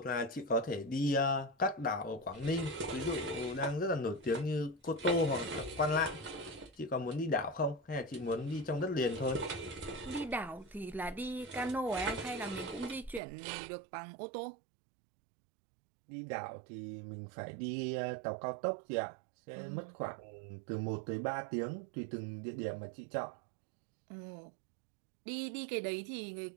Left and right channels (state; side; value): drops out; left; at 13.2 s